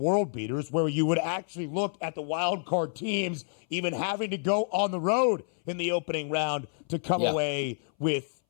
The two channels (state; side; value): silent; right; 59 dB below the other